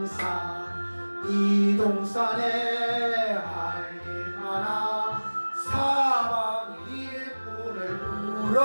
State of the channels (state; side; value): inverted; both; correlation -1.00